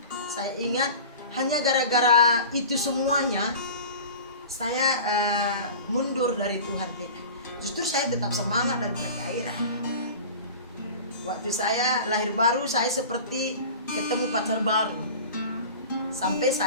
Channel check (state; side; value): inverted; both; correlation -0.37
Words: saya ingat hanya gara-gara itu semuanya saya mundur dari Tuhan kita. Justru saya tetap semangat dan bergairah. Waktu saya lahir baru, saya seperti ketemu pacar baru. Sampai